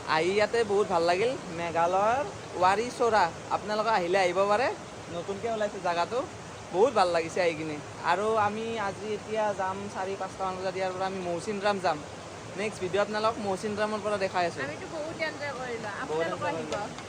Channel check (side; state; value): both; identical; correlation 1.00